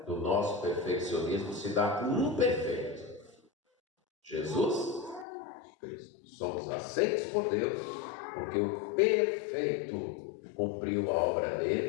do nosso perfeccionismo se dá com um perfeito: Jesus Cristo. Somos aceitos por Deus porque o perfeito cumpriu a obra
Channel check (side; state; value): right; drops out; at 5.2 s